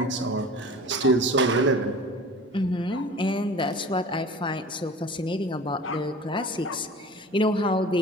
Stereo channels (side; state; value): both; normal; correlation 0.39